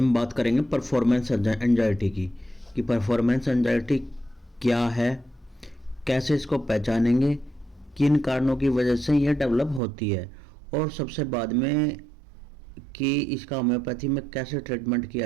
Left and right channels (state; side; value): drops out; left; at 9.8 s